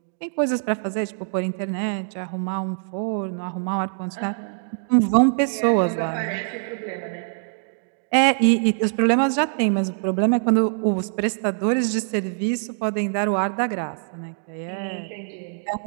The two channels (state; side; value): silent; left; digital silence